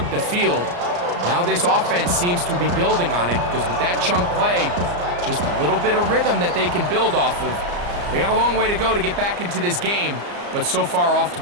the field. Now this offense seems to be building on it because with that chunk play, just a little bit of rhythm that they can build off of. They got a long way to go to get back into this game, but so far off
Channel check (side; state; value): left; late; 34 ms